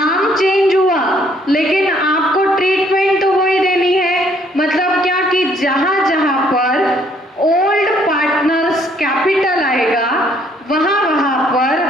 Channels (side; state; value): both; normal; correlation 0.65